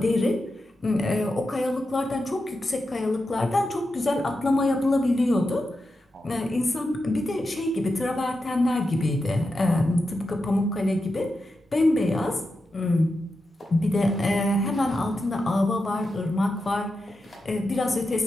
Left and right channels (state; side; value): normal; both; correlation 0.89